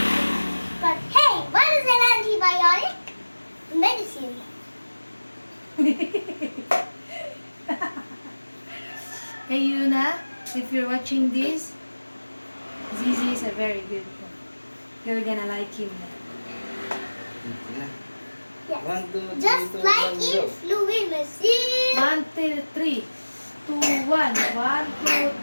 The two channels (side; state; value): both; inverted; correlation -1.00